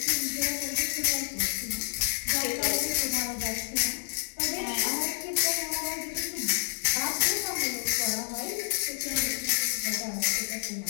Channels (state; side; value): silent; right; digital silence